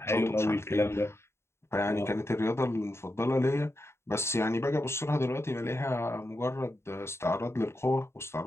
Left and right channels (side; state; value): right; late; 0.13 ms